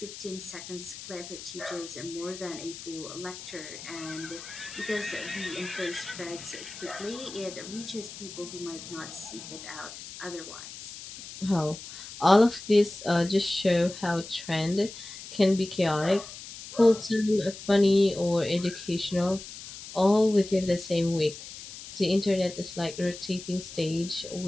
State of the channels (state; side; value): noise; left; hiss, 13 dB below the sound